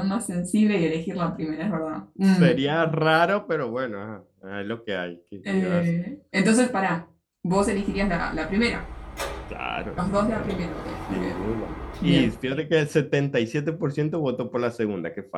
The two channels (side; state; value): both; identical; correlation 1.00